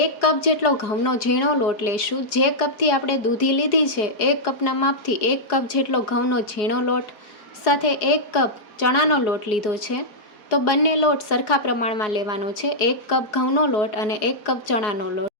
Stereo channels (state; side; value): late; right; 4.8 ms